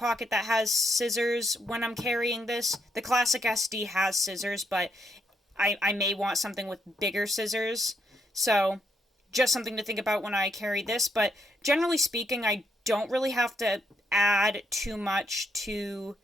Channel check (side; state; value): both; normal; correlation 0.76